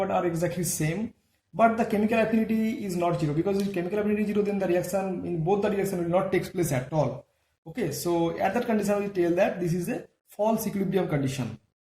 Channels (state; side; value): identical; both; correlation 1.00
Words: are exactly same, but the chemical affinity is not 0. Because if chemical affinity is 0, then the reaction in both the direction will not take place at all. Okay, so at that condition we tell that this is a false equilibrium condition.